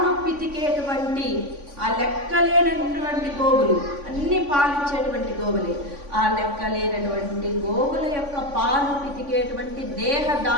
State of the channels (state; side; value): late; left; 3.5 ms